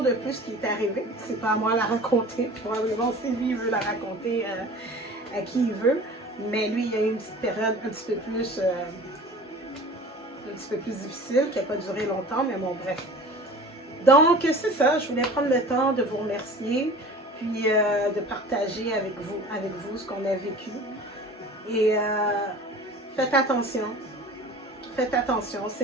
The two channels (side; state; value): both; normal; correlation 0.41